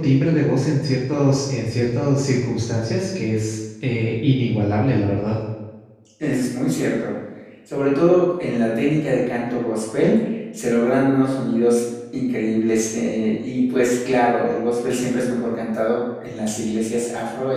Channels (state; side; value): identical; both; correlation 1.00